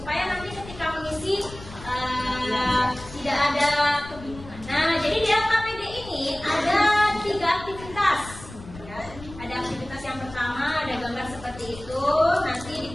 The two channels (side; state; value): left; noise; rumble, 16 dB below the sound